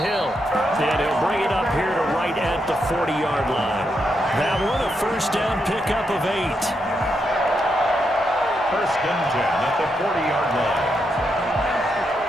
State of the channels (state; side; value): normal; both; correlation 0.82